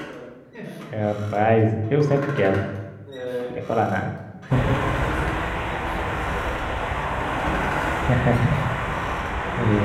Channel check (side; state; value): both; identical; correlation 1.00